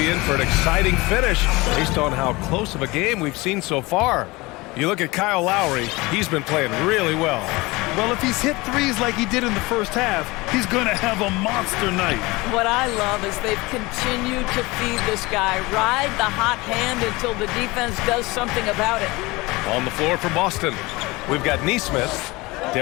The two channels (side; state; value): right; quieter; 22.6 dB